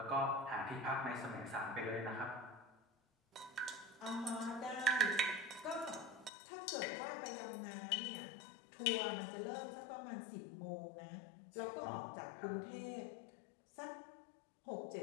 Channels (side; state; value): right; drops out; at 6.3 s